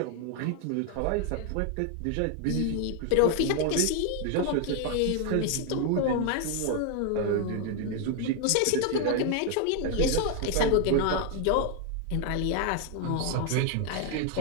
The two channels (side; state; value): both; different; correlation 0.01